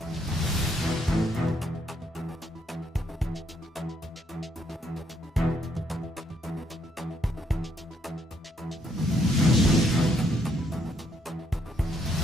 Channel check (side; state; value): both; normal; correlation 0.72